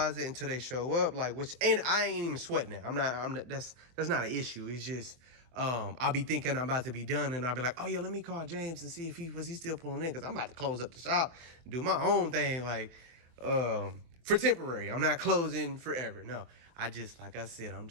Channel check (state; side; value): late; left; 23 ms